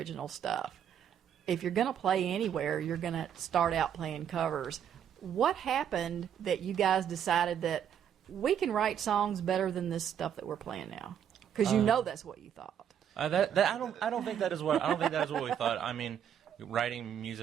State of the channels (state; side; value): quieter; left; 9.0 dB